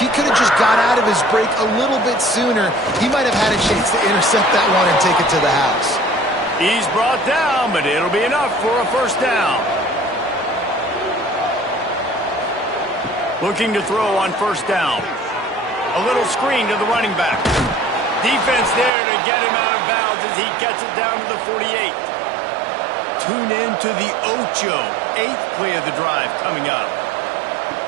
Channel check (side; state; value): left; drops out; at 18.9 s